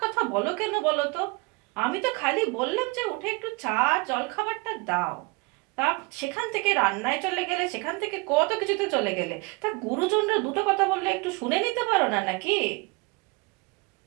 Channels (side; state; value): left; quieter; 27.3 dB